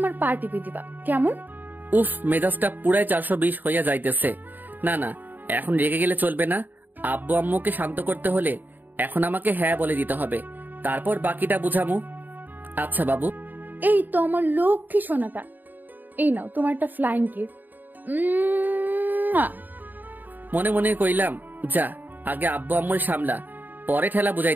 পা টিপে দিবা, কেমন? উফ, মেজাজটা পুরাই 420 হইয়া যাইতেছে। না না, এখন রেগে গেলে চলবে না। আব্বু আম্মুকে শান্ত করতে হলে এখন আমাকে হ্যাঁ বলে দিতে হবে, তারপর বাকিটা বুঝামু। আচ্ছা বাবু। এই তো আমার লক্ষ্মী সোনাটা, এই নাও তোমার একটা ফ্লাইং কিস। মনে মনে কইলাম, যা আগে আব্বু আম্মুর সামলা, পরে ঠেলা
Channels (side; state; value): left; late; 0.088 ms